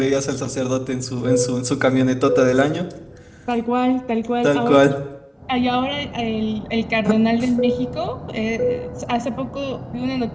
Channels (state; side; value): identical; both; correlation 1.00